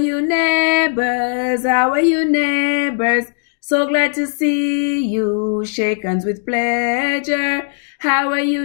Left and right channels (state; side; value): silent; right; digital silence